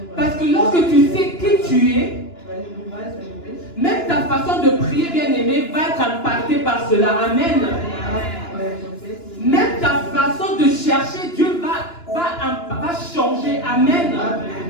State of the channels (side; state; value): right; late; 2.9 ms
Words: Parce que lorsque tu sais qui tu es, même ta façon de prier, bien-aimé, va être impactée par cela. Amen. Même ta façon de chercher Dieu va changer. Amen.